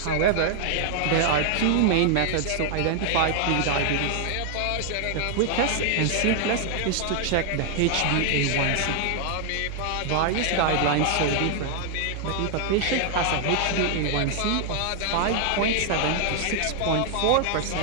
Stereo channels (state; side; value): different; both; correlation 0.00